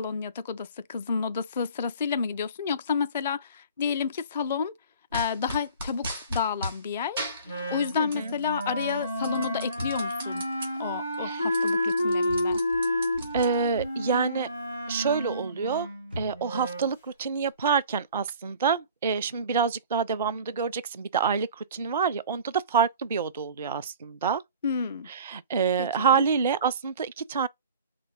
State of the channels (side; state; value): both; inverted; correlation -0.48